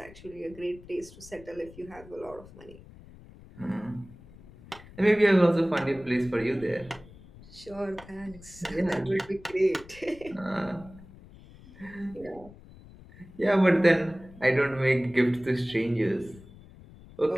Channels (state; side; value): noise; left; rumble, 20 dB below the sound